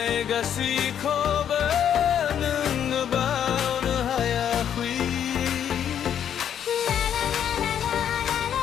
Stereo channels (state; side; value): quieter; right; 9.2 dB